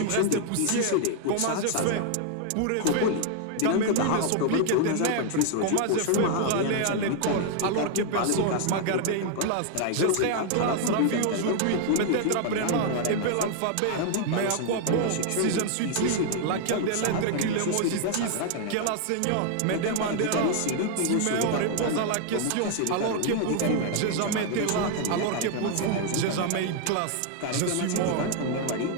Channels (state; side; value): different; both; correlation 0.00